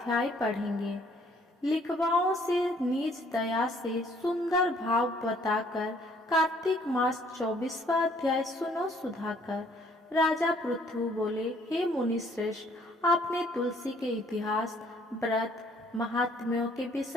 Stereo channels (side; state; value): both; normal; correlation 0.61